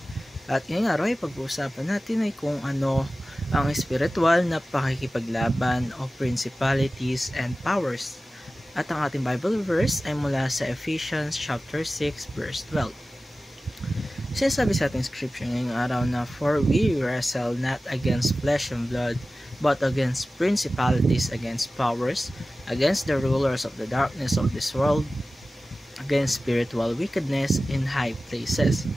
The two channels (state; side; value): normal; both; correlation 0.96